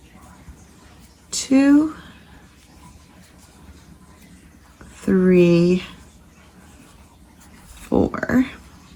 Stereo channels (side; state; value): both; identical; correlation 1.00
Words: 2, 3, 4.